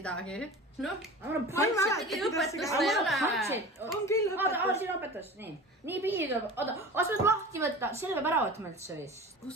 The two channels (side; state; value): both; normal; correlation 0.36